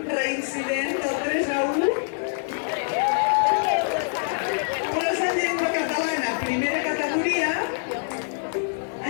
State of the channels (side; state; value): right; silent; digital silence